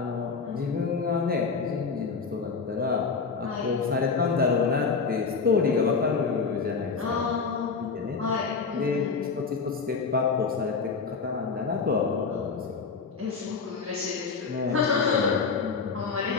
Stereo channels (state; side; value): quieter; right; 5.0 dB